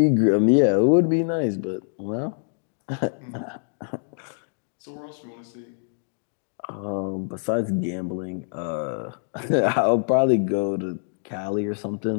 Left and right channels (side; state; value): right; silent; digital silence